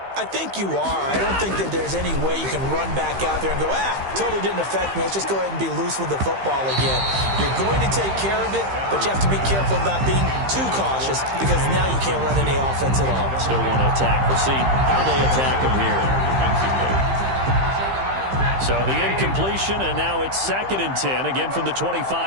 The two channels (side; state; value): left; late; 15 ms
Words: I think you are. I don't think that there's any way you can run back out there and go, totally didn't affect me. Let's just go ahead and be loose with the football again. You're going to take care of it, but you have to be careful about being too cautious, because now you can't run any offense at all. Still want to attack. We'll see how they attack them here. So the incompletion, and now it's 2nd and 10, again from the